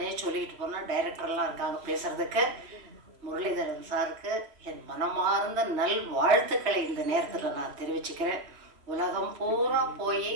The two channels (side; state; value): left; late; 2.9 ms